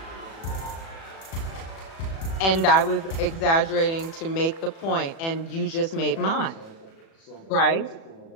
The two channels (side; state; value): right; late; 36 ms